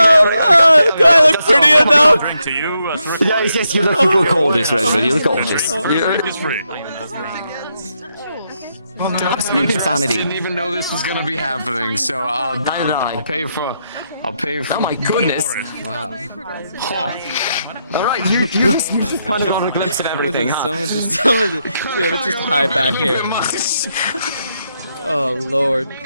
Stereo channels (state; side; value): inverted; both; correlation -0.81